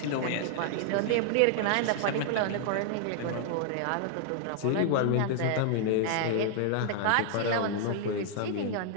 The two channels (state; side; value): different; both; correlation -0.01